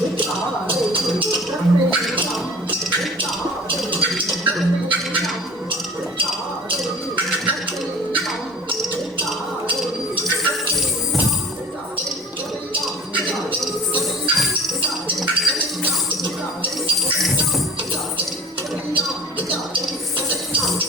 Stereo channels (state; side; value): normal; both; correlation 0.45